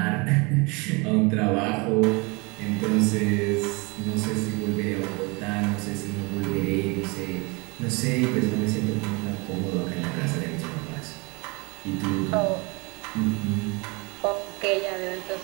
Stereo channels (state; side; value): quieter; left; 28.3 dB